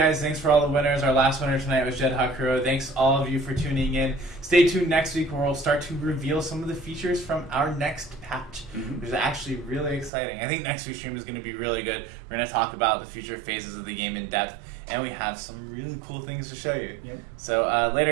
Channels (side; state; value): left; drops out; at 10.1 s